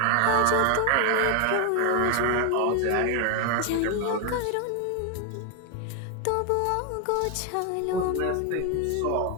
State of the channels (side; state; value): both; different; correlation 0.01